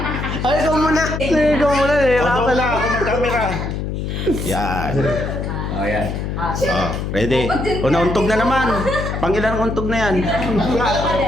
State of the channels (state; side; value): noise; left; hum, 4 dB below the sound